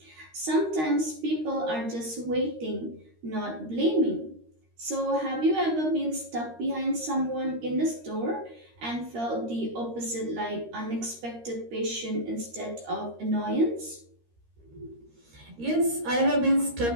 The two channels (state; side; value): late; left; 13 ms